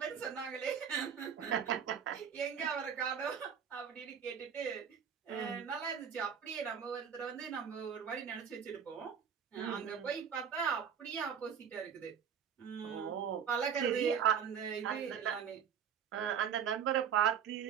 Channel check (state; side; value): quieter; left; 7.7 dB